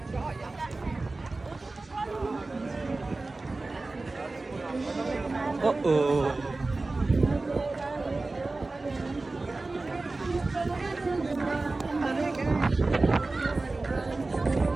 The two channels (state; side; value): quieter; left; 3.3 dB